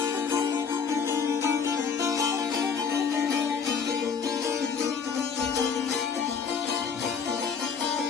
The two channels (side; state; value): right; quieter; 6.1 dB